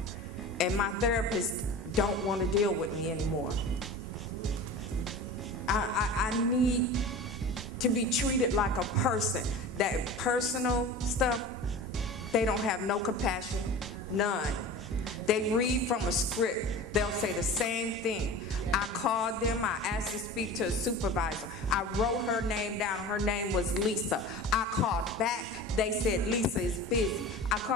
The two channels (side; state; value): both; normal; correlation 0.35